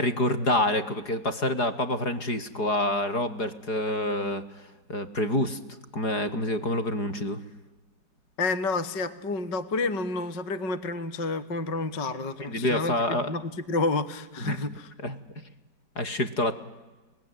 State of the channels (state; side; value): late; right; 4.8 ms